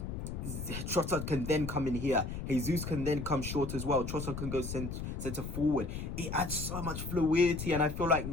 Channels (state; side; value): noise; left; rumble, 5 dB below the sound